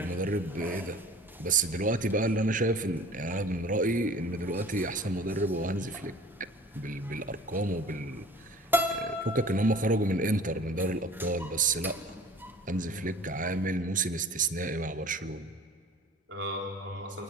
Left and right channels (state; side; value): normal; both; correlation 0.45